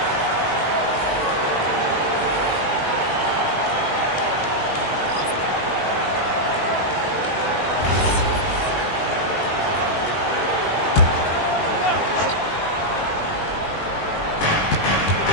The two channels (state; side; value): late; right; 20 ms